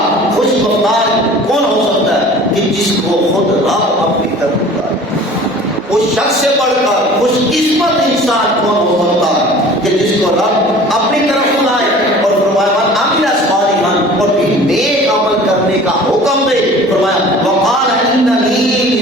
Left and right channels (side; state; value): both; normal; correlation 0.44